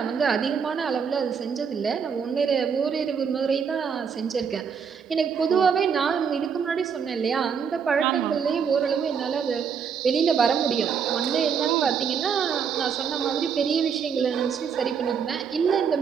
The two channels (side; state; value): left; quieter; 6.8 dB